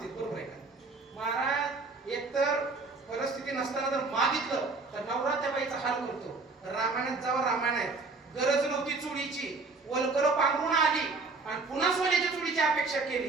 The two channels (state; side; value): quieter; left; 3.9 dB